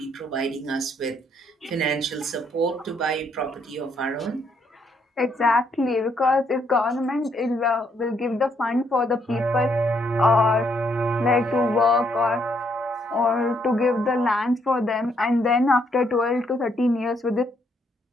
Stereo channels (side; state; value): both; normal; correlation 0.72